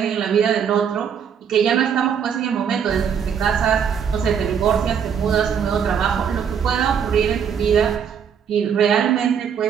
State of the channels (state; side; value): quieter; left; 7.6 dB